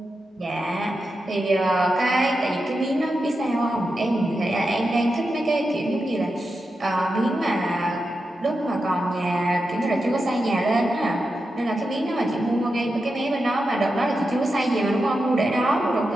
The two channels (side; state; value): both; normal; correlation 0.89